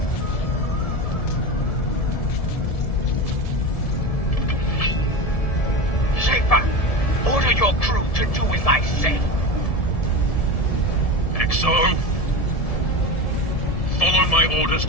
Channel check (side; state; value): right; late; 1.7 ms